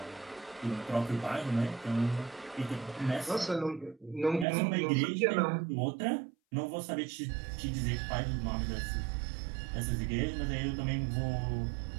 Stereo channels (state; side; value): drops out; left; at 4.5 s